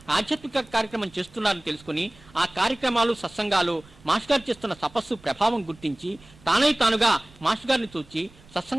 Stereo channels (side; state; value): right; noise; rumble, 25 dB below the sound